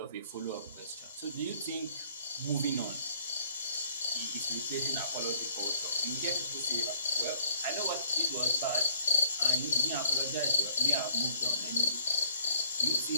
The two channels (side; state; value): both; inverted; correlation -0.60